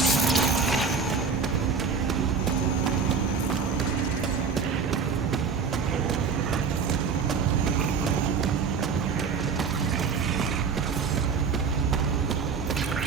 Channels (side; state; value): left; quieter; 5.7 dB